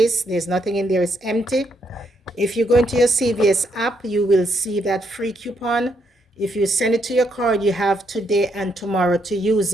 There's nothing in there. It's empty. If you go into your CVS app, you will see that free coupon. If you send it to your card, you have today and tomorrow to use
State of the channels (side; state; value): both; normal; correlation 0.75